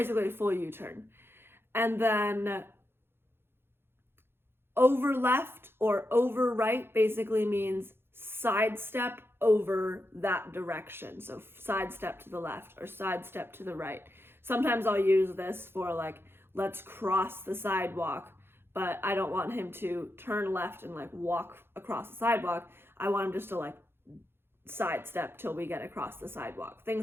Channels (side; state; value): left; late; 0.11 ms